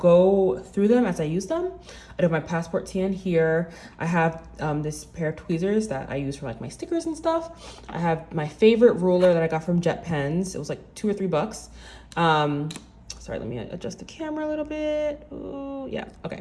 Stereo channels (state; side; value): identical; both; correlation 1.00